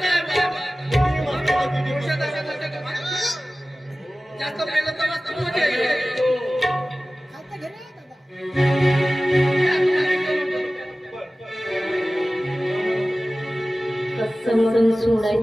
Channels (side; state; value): both; normal; correlation 0.97